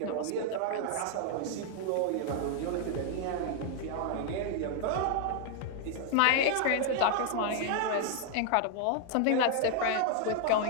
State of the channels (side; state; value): both; different; correlation 0.00